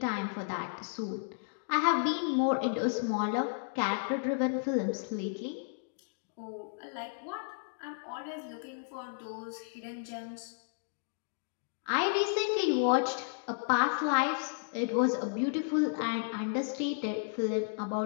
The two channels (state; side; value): silent; right; digital silence